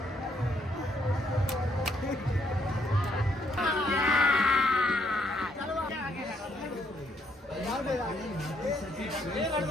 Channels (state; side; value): normal; both; correlation 0.71